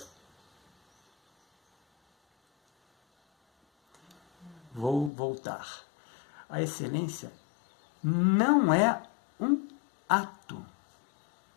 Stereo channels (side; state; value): right; drops out; at 5.1 s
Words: Vou voltar. A excelência não é um ato,